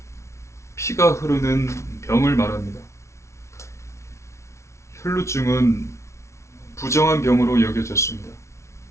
피가 흐르는 병을 말합니다. 혈루증은 부정한 병으로 여겨졌습니다.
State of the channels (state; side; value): late; right; 0.13 ms